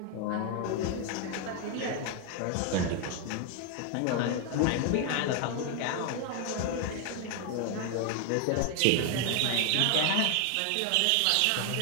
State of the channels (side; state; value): both; different; correlation 0.00